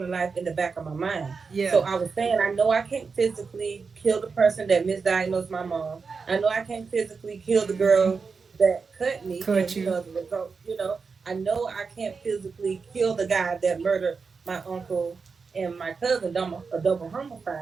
Life in the back of my mind. So Yeah. I was saying, I know I can't physically kill the person that misdiagnosed my mom. I know I can't physically kill the Mm-hmm. girl that cut me. Cut And, you. as a result, I know I can't physically kill the guy that murdered my uncle and my cousin, a double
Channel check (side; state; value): left; quieter; 5.0 dB